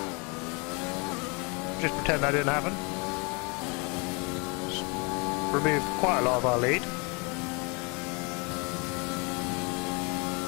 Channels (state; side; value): quieter; right; 31.8 dB